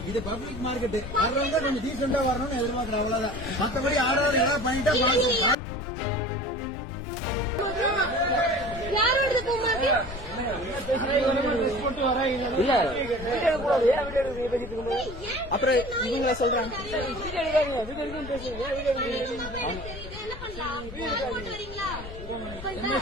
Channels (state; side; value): noise; left; rumble, 11 dB below the sound